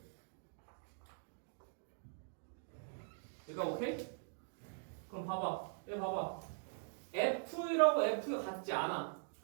얘가 오케이? 그럼 봐봐. 얘 봐봐. F1하고 F가 같지 않아.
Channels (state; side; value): silent; left; digital silence